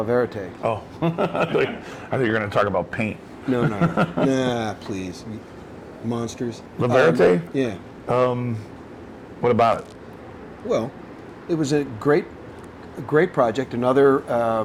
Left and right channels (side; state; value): both; identical; correlation 1.00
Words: Verete. Oh, I thought you were going to talk about paint. No, nah, please, monsters. La Verete? Yeah. What about it? Well, it was a great project. Another